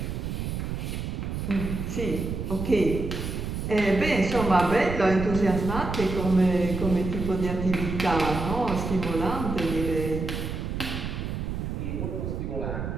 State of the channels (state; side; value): noise; right; rumble, 4 dB below the sound